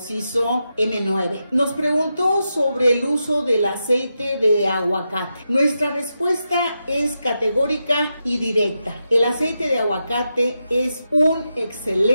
hizo M9. Nos preguntó sobre el uso del aceite de aguacate. Nuestra respuesta es categórica y directa. El aceite de aguacate es un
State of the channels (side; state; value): both; inverted; correlation -0.87